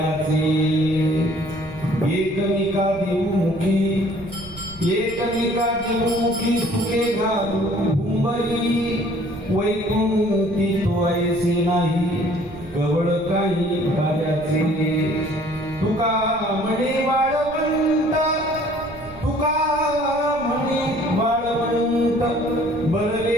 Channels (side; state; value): right; noise; rumble, 18 dB below the sound